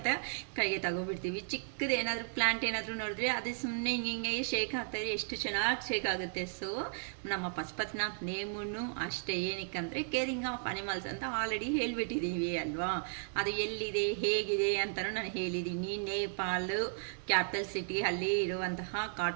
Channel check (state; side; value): silent; left; digital silence